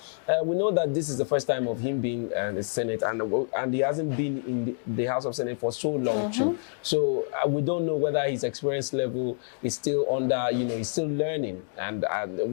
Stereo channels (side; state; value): right; silent; digital silence